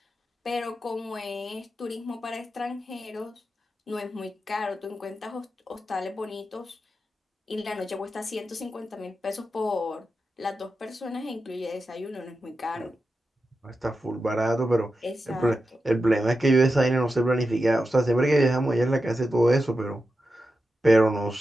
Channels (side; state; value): both; normal; correlation 0.90